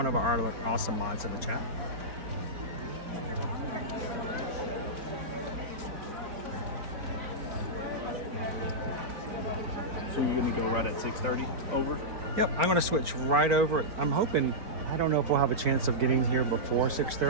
of our awesome mods in the chat. So you're gonna go right at 6:30 over? Yep, I'm gonna switch right over. I'm hoping, I don't know if we'll have a chance of getting here before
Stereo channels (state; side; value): late; left; 4.4 ms